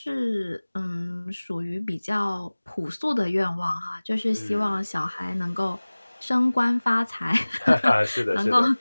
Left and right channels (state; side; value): inverted; both; correlation -1.00